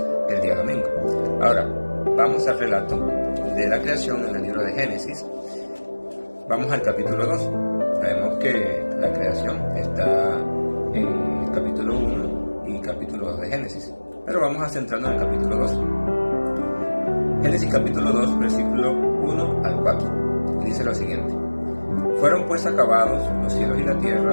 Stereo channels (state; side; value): inverted; both; correlation -1.00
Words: el día domingo. Ahora, vamos al relato de la creación en el libro de Génesis. Vamos al capítulo 2. Sabemos que la creación está en el capítulo 1 y capítulo 2 de Génesis. Pero vamos a centrarnos en el capítulo 2. Génesis capítulo 2, versículo 1 al 4. Y dice lo siguiente: Fueron pues acabados los cielos y la